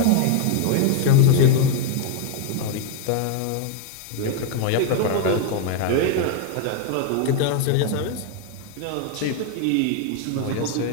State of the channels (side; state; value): both; different; correlation 0.01